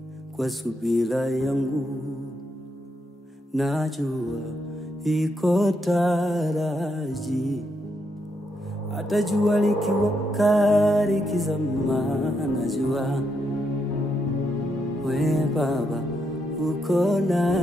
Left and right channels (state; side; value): normal; both; correlation 0.80